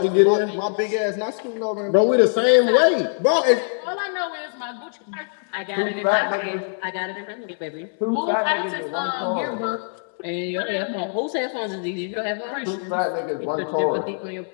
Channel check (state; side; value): silent; right; 63 dB below the other